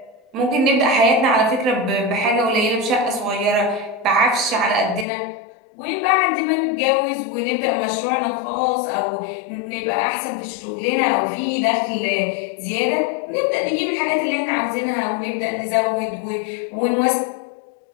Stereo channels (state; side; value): drops out; right; at 5.1 s